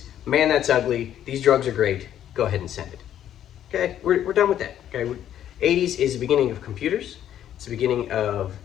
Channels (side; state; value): right; quieter; 10.8 dB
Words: Man, that's ugly. These drugs are great. Go ahead and send it. Okay, we're done with that. Okay, 80s is the beginning of computers. It's the beginning of